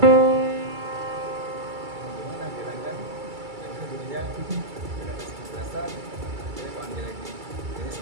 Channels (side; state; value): left; late; 2.3 ms